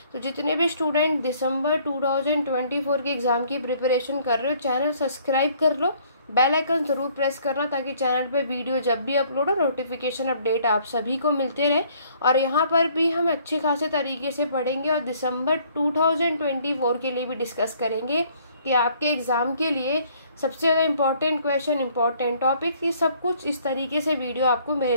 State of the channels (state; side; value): inverted; both; correlation -0.61